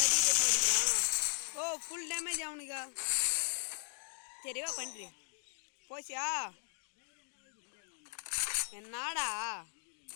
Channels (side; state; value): right; silent; 53 dB below the other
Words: பண்ணிக்கிறான். ஓ ஃபுல் டேமேஜ் அவனுக்கா. சரிவா பண்ணுறி போச்சியா என்னடா